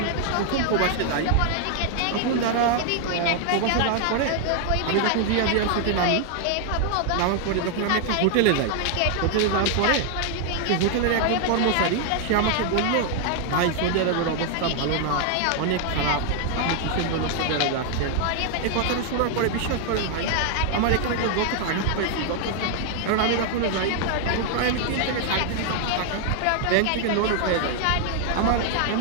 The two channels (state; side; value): different; both; correlation 0.00